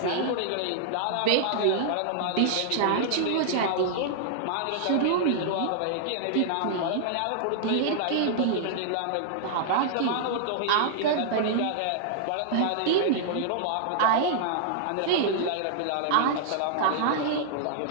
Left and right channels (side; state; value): both; different; correlation -0.01